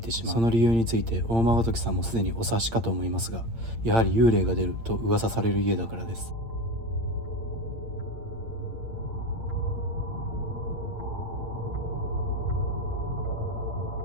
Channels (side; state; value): left; late; 8.7 ms